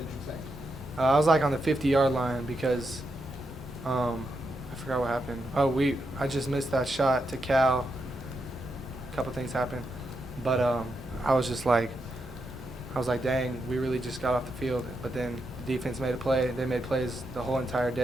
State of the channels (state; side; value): normal; both; correlation 0.84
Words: you think? I was like on the 50-yard line because I forgot what happened. I just missed that shot to Cal. A couple things happened, but I was like, dang, we really just got off the field. But then the defense made a play. They made plays the whole entire